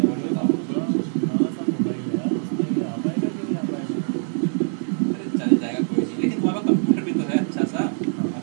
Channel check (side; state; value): left; silent; 63 dB below the other